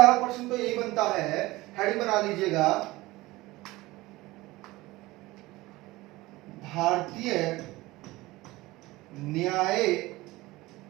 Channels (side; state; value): left; quieter; 19.7 dB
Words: प्रश्न तो यही बनता है, हेडिंग बना लीजिएगा, भारतीय न्यायपालिका।